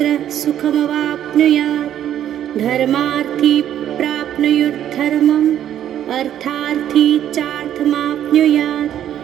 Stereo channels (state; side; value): quieter; left; 10.8 dB